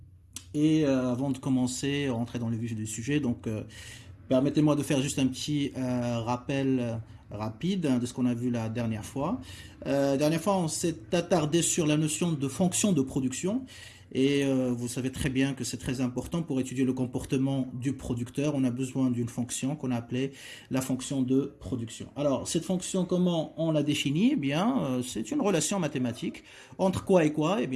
Et avant de commencer, rentrer dans le vif du sujet, donc permettez-moi de faire juste un petit rappel rapide de ce qu'on a vu la dernière fois. Dernière fois, on s'est attardé sur la notion de fonction de production. Et vous savez très bien que c'est très important pour étudier le comportement du producteur. On a besoin d'une fonction qu'on a appelée la fonction de production. Alors, cette fonction, comment on la définit? Eh bien, c'est une relation mathématique. Entre quoi et quoi? Eh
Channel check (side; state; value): both; identical; correlation 1.00